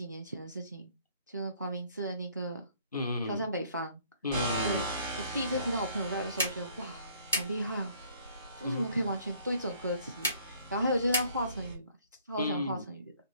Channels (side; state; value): both; inverted; correlation -0.60